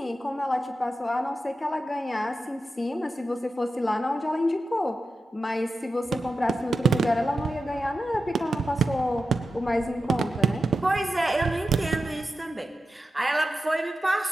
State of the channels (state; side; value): normal; both; correlation 0.91